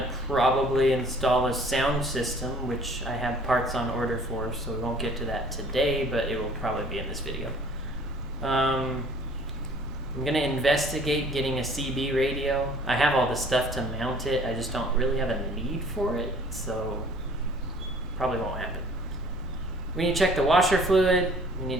probably install a sound system, which I have parts on order for, so we won't get to that today, but it will probably be in this video. I'm gonna investigate getting a CB radio. I have all the stuff to mount it, I just don't really have a need for it, so probably won't happen. We need to check the washer fluid, we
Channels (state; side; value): normal; both; correlation 0.53